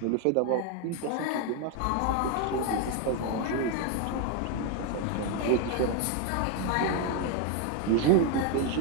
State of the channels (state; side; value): different; both; correlation 0.01